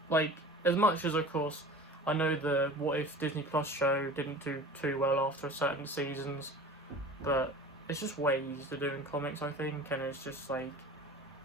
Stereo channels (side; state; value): both; normal; correlation 0.39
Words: like, as much as of course I know the What If Disney Plus show didn't do too well after certain seasons, but it's just way easier to do in comics, I think. And it's just like,